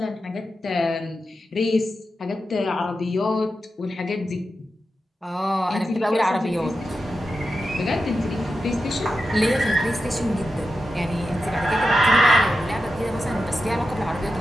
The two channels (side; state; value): both; normal; correlation 0.90